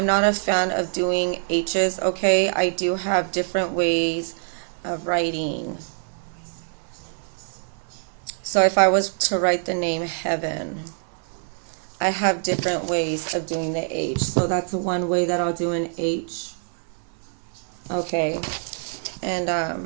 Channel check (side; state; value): left; silent; 62 dB below the other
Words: not a fan of doing H's, okay? I do have different ways of writing. So if I was to write the name Heaven, I have different ways of doing the H. So that's one way that I'll do an H. Okay. And